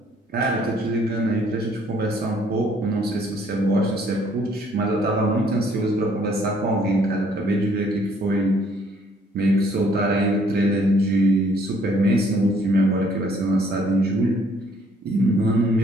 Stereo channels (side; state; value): both; normal; correlation 0.63